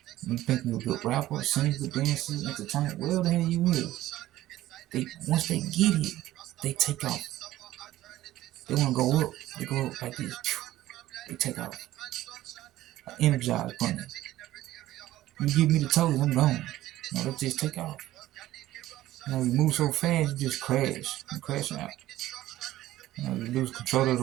you think you're a good rapper, singer, dancer, entertainer, whatever the hell you is, once they get it, they take off. They want to go up. They go up like this. They take off. I energize bunny. You give me the toes, I'm gone. No, they just take off. You know, you move so fast, you just crash. You crash out. You know, you lose control of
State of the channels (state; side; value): quieter; left; 15.1 dB